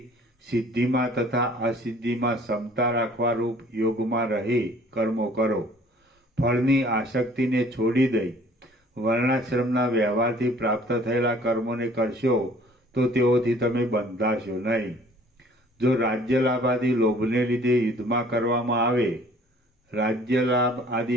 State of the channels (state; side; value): normal; both; correlation 0.54